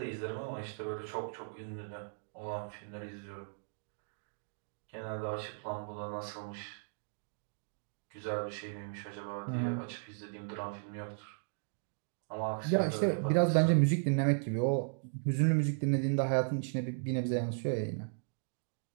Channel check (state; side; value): silent; left; digital silence